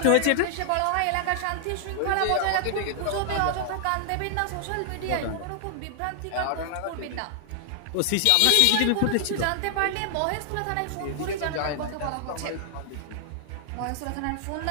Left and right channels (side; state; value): both; different; correlation 0.00